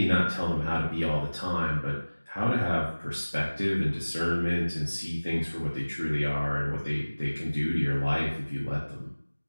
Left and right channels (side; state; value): both; inverted; correlation -1.00